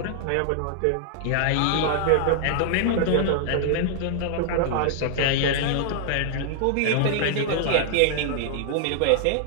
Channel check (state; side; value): different; both; correlation 0.00